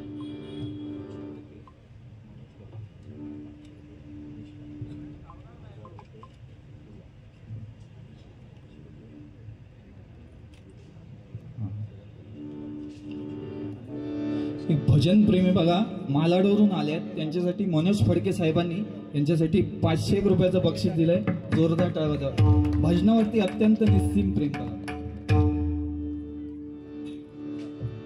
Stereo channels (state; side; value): identical; both; correlation 1.00